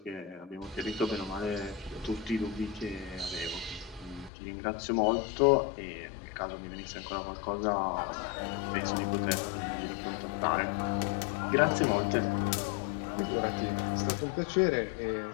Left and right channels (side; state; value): right; drops out; at 4.3 s